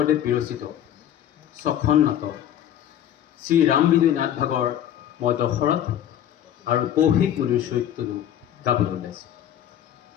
বিৰচিত ছখন নাটক শ্ৰী ৰাম বিজয় নাট ভাগৰ মই দশৰথ আৰু কৌশিক মুনিৰ চৰিত্ৰটো গাবলৈ ওলাইছোঁ।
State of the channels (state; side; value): quieter; right; 10.7 dB